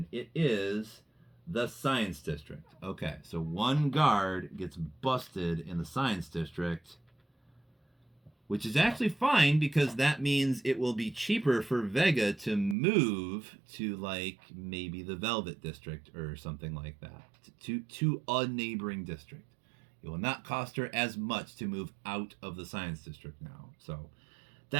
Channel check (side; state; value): left; drops out; at 12.8 s